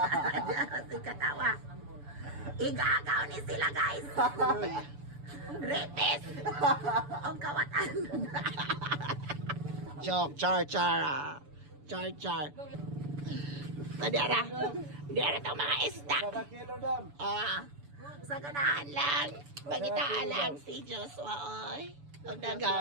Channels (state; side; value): late; left; 7.0 ms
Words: Di ako si Katawa. Igagaw ni sila guys. Repes. Ang kawatan. Joke, char-char. Char-char. Di ara itong mga isda. Sa ganahan lang, pagitaan lang si Joshua, oy. Ang